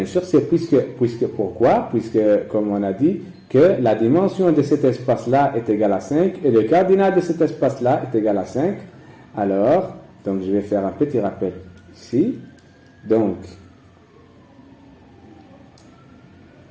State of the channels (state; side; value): identical; both; correlation 1.00